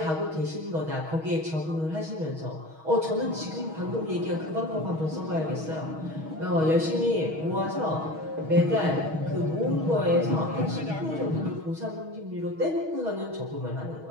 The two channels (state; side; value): late; left; 6.3 ms